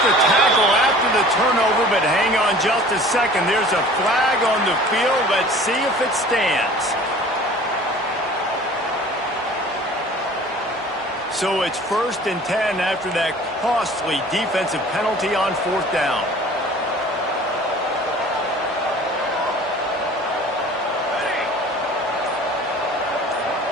the tackle after the turnover, but hang on just a second. There's a flag on the field. Let's see if it stands. So it's 1st and 10 after that costly defensive penalty on 4th down.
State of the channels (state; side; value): normal; both; correlation 0.46